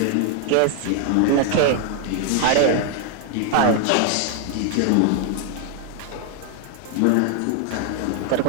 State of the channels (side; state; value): both; different; correlation 0.00